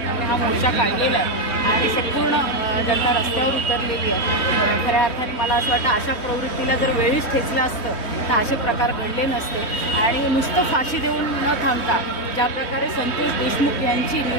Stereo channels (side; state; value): right; late; 3.1 ms